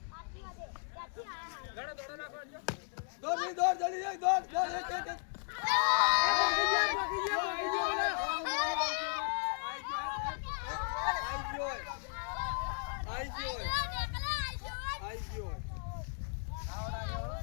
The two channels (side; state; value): right; silent; 54 dB below the other